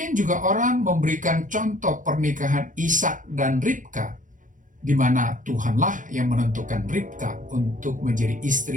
juga orang memberikan contoh pernikahan Ishak dan Ribka, di mana Tuhanlah yang menentukan Ribka untuk menjadi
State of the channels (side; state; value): left; late; 0.38 ms